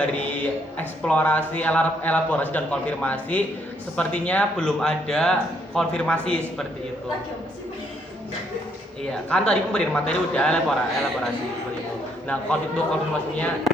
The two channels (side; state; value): both; normal; correlation 0.71